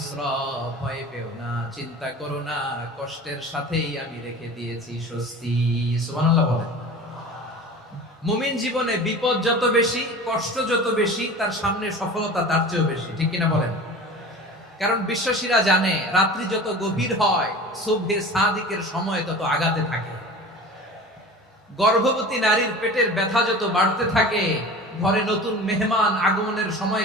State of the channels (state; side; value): normal; both; correlation 0.37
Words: ভয় পেও না, চিন্তা করো না, কষ্টের সাথেই আমি রেখে দিয়েছি স্বস্তি। সুবহানাল্লাহ বলেন। মুমিন জীবনে বিপদ যত বেশি, কষ্ট যত বেশি, তার সামনে সফলতা তার চেয়েও বেশি, ঠিক কিনা বলেন? কারণ বিশ্বাসীরা জানে রাত্রি যত গভীর হয় সুবহে সাদিকের সময় তত আগাতে থাকে। গর্ভবতী নারীর পেটের ব্যথা যত বাড়তে থাকে, ঘরে নতুন মেহমান আগমনের সময়